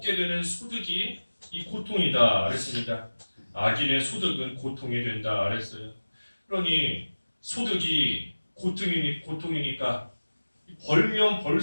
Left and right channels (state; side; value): inverted; both; correlation -1.00